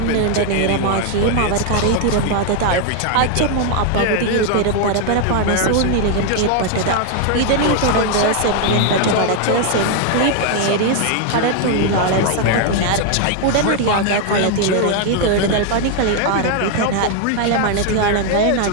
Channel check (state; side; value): different; both; correlation 0.01